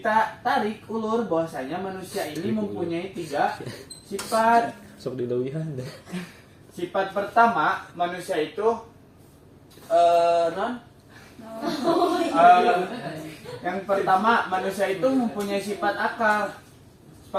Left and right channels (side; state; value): both; identical; correlation 1.00